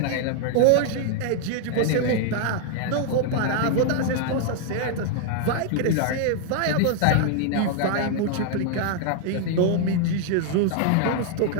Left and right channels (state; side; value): different; both; correlation 0.00